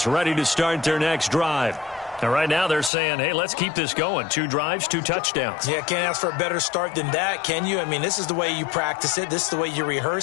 ready to start their next drive. And right now they're saying, hey, let's keep this going. 2 drives, 2 touchdowns. Yeah, can't ask for a better start than that, can you? I mean, this is the way you practice it. This is the way you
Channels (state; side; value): drops out; right; at 2.9 s